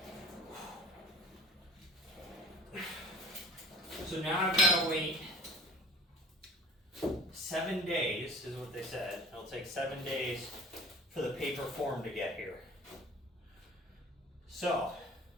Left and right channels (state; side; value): normal; both; correlation 0.45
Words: So now I've got to wait 7 days, is what they said. It'll take 7 days for the paper form to get here. So,